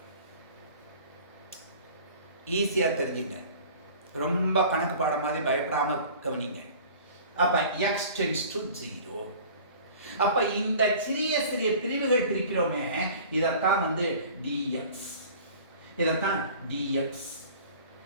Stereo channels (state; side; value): inverted; both; correlation -0.45